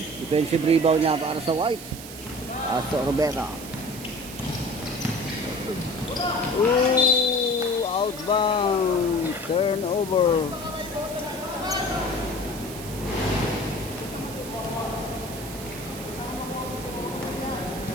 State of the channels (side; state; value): right; noise; hiss, 13 dB below the sound